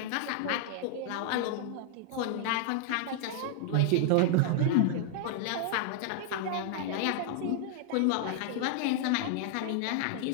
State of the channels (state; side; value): different; both; correlation 0.00